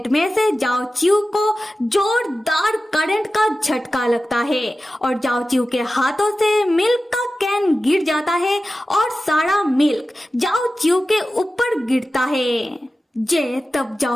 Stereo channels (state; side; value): normal; both; correlation 0.94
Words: में से जाओ चिऊ को जोरदार करंट का झटका लगता है और जाओ चिऊ के हाथों से मिल्क का कैन गिर जाता है और सारा मिल्क जाओ चिऊ के ऊपर गिरता है। जे तब